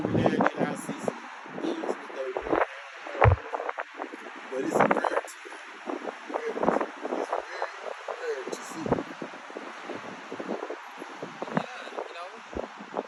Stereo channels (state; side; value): identical; both; correlation 1.00